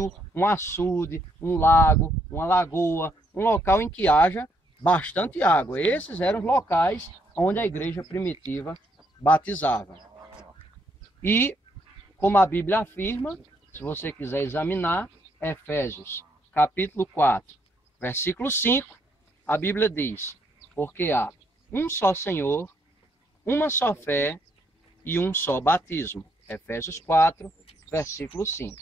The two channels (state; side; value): normal; both; correlation 0.73